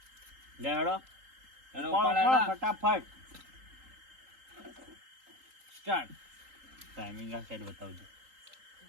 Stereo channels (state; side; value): late; left; 3.8 ms